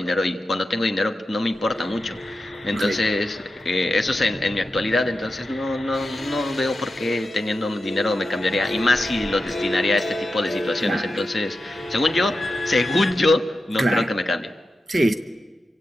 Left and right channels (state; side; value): normal; both; correlation 0.91